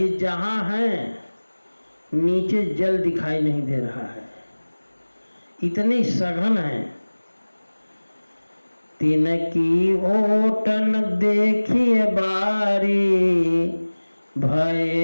जहाँ हैं नीचे जल दिखाई नहीं दे रहा है, इतनी सघन है। तिनकी ओटन देखिए बारी,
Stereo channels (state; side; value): inverted; both; correlation -1.00